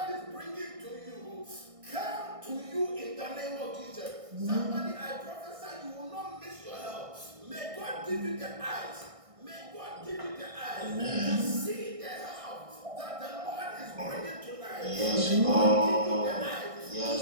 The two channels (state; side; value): late; left; 1.6 ms